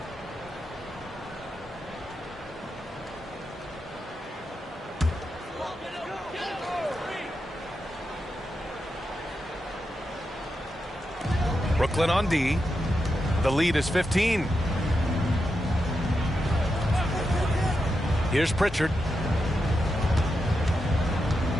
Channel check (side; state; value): both; normal; correlation 0.87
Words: Brooklyn on D. The lead is 15. Here's Pritchard.